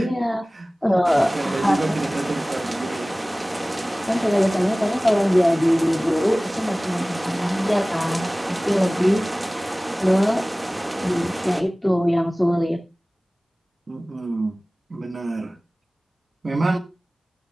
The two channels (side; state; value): both; normal; correlation 0.98